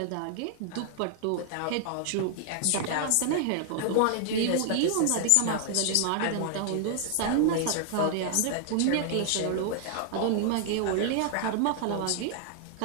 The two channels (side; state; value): both; different; correlation 0.00